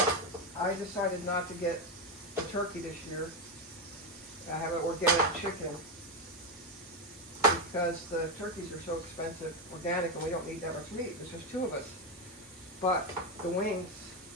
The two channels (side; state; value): both; normal; correlation 0.09